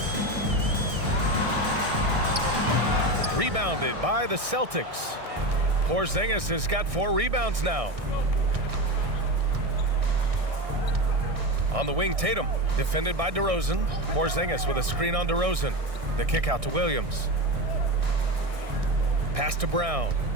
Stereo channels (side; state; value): left; late; 1.6 ms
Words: Rebounded by the Celtics. Porzingis has got 4 rebounds now. On the wing, Tatum, defended by DeRozan. Porzingis with a screen on DeRozan. The kick out to Williams. Pass to Brown.